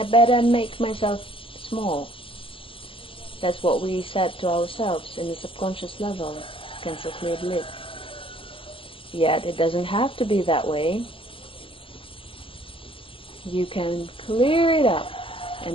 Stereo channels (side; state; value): right; late; 0.26 ms